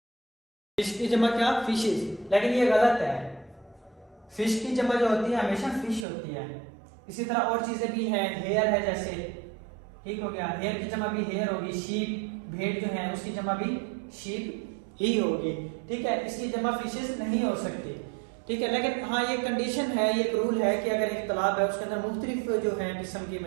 फिश की जमा क्या, फिशेस, लेकिन ये गलत है। फिश की जमा जो होती है हमेशा फिश होती है। इसी तरह और चीजें भी हैं, हेयर है जैसे, ठीक हो गया, हेयर की जमा भी हेयर होगी। शीप, भेड़ जो है उसकी जमा भी शीप ही होगी। ठीक है, इसकी जमा फिशेस नहीं हो सकती। ठीक है, लेकिन हाँ ये कंडीशन है, ये एक रूल है कि अगर एक तालाब है उसके अंदर मुख्तलिफ जो है किस्म की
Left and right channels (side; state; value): left; drops out; at 6.1 s